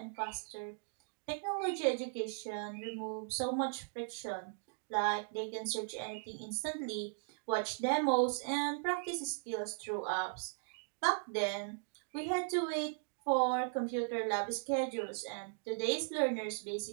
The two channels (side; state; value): left; silent; digital silence